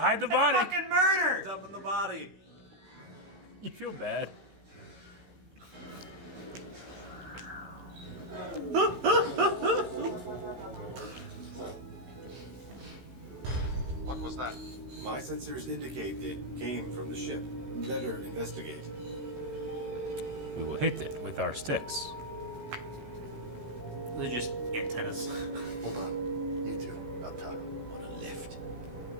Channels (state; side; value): late; left; 16 ms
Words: the body. Fucking murder! Dumping the body. You feel bad. What was that? My sensors indicate it came from the ship. Better investigate. We will hit it with our sticks. They're just antennas. Hold on. You two, up top. On a lift.